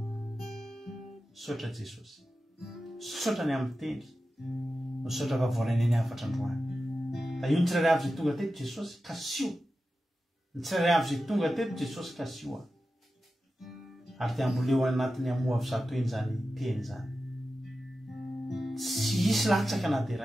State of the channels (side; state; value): both; normal; correlation 0.93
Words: Sotra Jesosy, sotra ny amin'ny teny, sotra fa voalaina ny afatra androany. Da io ny tsirairay avy izay tonga teto Jesosy kasio, ny tsirairay avy izay tonga teto Jesosy kasio ary dia amboleo anatiny amoa avy zato eny zany teny zany. Tsy hisy latsaka na dia